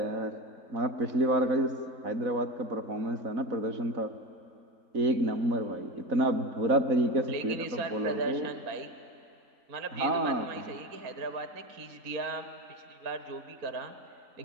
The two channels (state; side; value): late; left; 4.3 ms